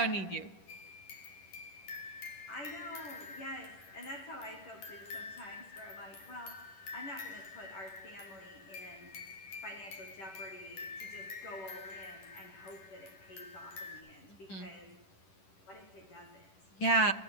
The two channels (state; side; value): late; right; 10 ms